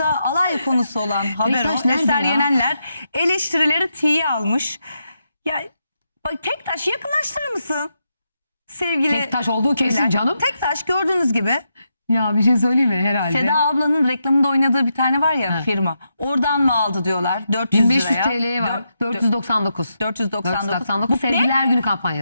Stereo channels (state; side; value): inverted; both; correlation -0.84